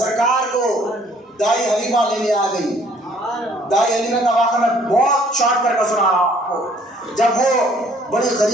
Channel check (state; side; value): normal; both; correlation 0.60